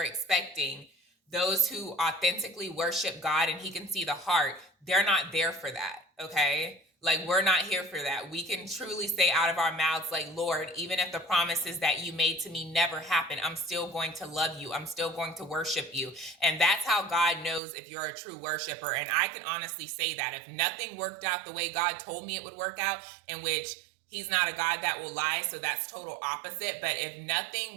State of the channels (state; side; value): drops out; left; at 17.6 s